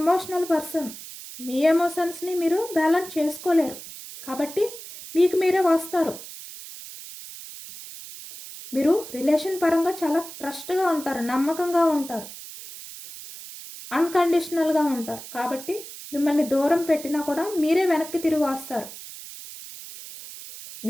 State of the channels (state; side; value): noise; right; hiss, 13 dB below the sound